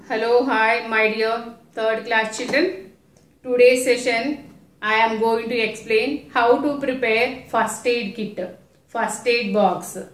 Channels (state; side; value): identical; both; correlation 1.00